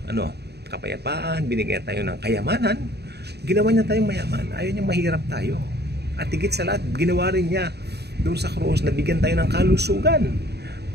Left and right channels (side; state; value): left; late; 0.48 ms